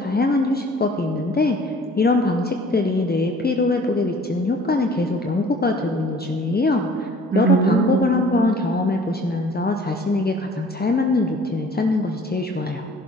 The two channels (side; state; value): both; normal; correlation 0.52